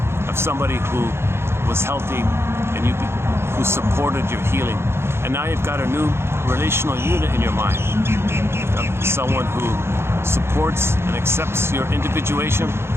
of somebody who was healthy and who supported your healing. And now you've got a new relational unit in your mind of someone who supports and accepts your individuation,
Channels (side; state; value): left; late; 0.12 ms